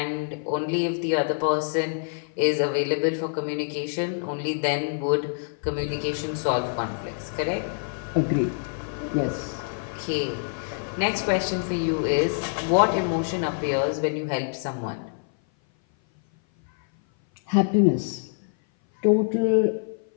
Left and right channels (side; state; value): right; silent; 57 dB below the other